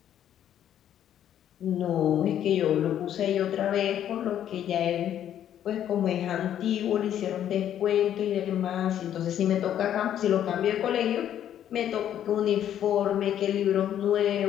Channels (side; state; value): right; quieter; 10.5 dB